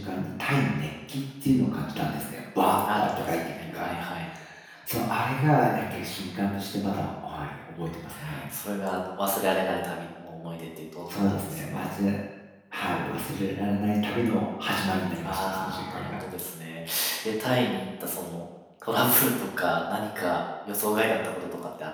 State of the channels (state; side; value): identical; both; correlation 1.00